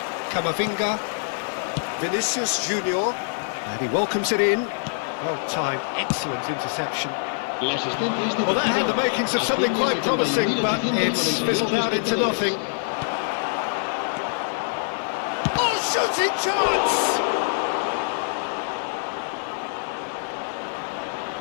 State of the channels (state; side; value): silent; right; 62 dB below the other